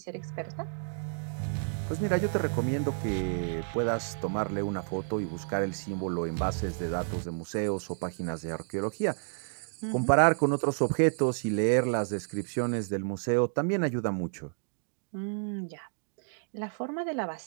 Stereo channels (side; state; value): left; silent; digital silence